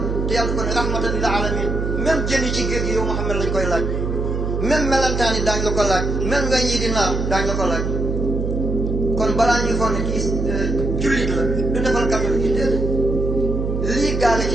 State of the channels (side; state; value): right; noise; hum, 1 dB below the sound